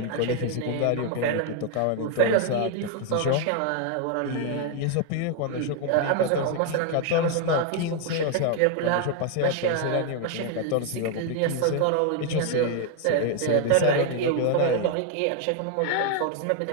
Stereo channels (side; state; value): both; different; correlation 0.00